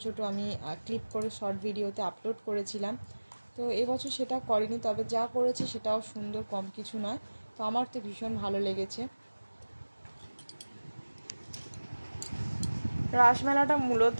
ছোট আমি ক্লিপ করে শর্ট ভিডিওতে আপলোড করেছিলাম। তো এবছর সেটা করেনি, তবে যা করেছে সেটাও সুন্দর, কম কিছু নয়। তো আমার তো ভীষণ ভালো লেগেছে। রাসমেলাটা মূলত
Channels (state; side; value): inverted; both; correlation -1.00